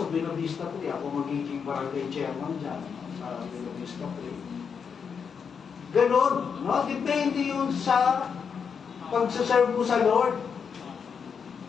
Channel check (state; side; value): quieter; right; 6.4 dB